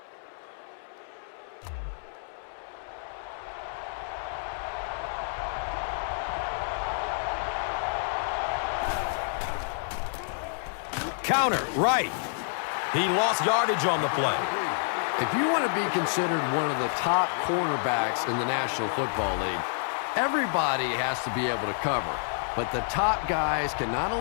Counter, right. He lost yardage on the play. If you want to be considered one of the top cornerbacks in the National Football League, everybody has to be able to cover. But the top guys can not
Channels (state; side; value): silent; right; 59 dB below the other